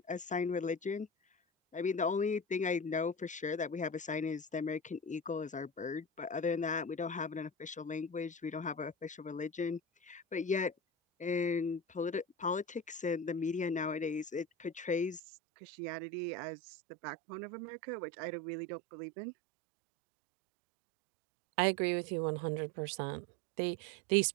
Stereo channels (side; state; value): left; drops out; at 15.2 s